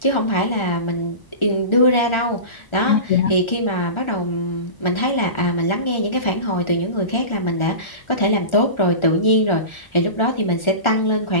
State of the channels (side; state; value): right; late; 1.4 ms